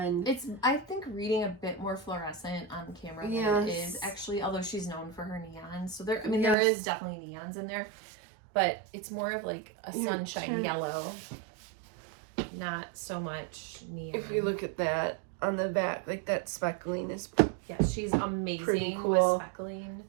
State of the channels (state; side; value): drops out; left; at 6.6 s